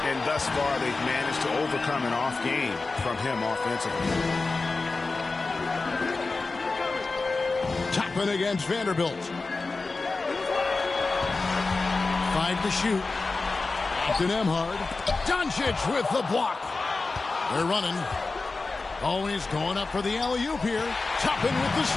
And thus far, they've managed to overcome an off game from him offensively. Toppin against Vanderbilt. 5 to shoot. Captain Emhard. Doncic with the block. They're running. Oh, he's going up for the alley-oop here. Toppin with the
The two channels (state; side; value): quieter; right; 3.8 dB